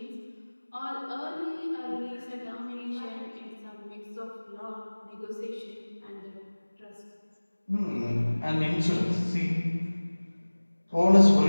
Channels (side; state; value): both; inverted; correlation -1.00